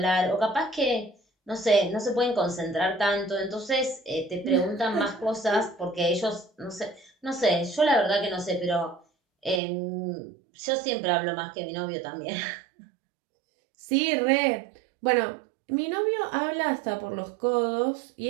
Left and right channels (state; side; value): drops out; left; at 9.6 s